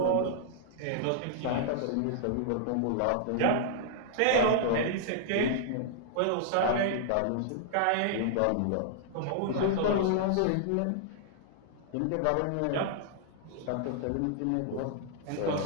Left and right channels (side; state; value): both; different; correlation -0.01